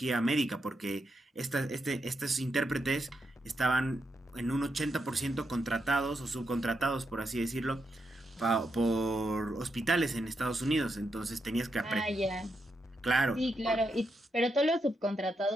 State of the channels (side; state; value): both; normal; correlation 0.83